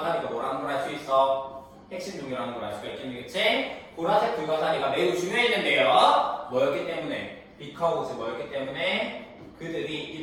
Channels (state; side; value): identical; both; correlation 1.00